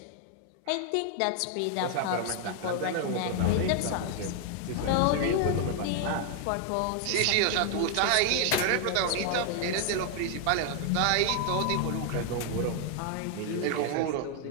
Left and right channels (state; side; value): different; both; correlation 0.00